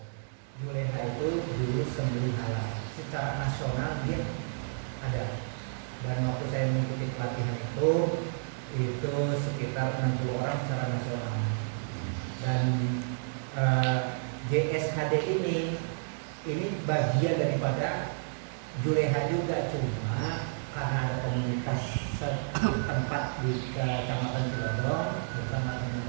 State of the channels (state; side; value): silent; left; digital silence